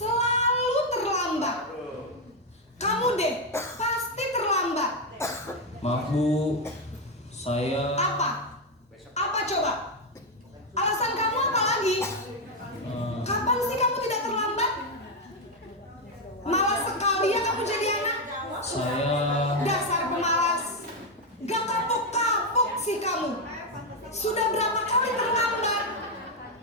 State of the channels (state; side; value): normal; both; correlation 0.05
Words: terlambat. Kamu deh, pasti terlambat. Maaf Bu, saya Apa? Apa coba? Alasan kamu apa lagi? Kapan sih kamu tidak terlambat? Malas sekali ya kamu jadi anak. saya Dasar pemalas. Gak kapok-kapok sih kamu. Sudah berapa kali terlambat?